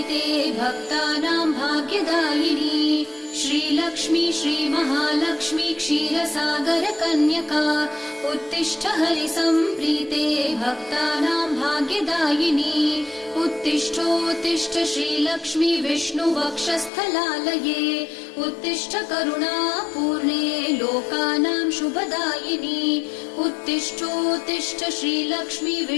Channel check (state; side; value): drops out; right; at 16.9 s